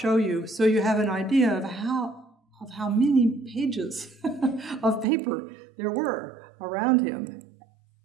you so you have an idea of how many pages of paper there were around him,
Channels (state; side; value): drops out; left; at 5.1 s